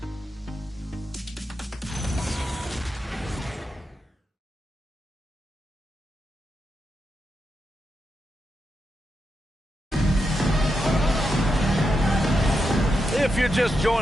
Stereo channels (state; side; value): normal; both; correlation 0.86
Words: If you're just